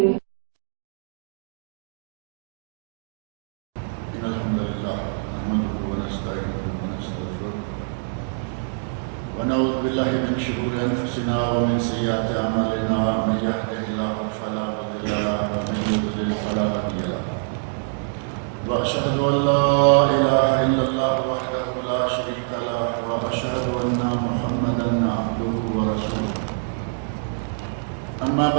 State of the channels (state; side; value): silent; left; digital silence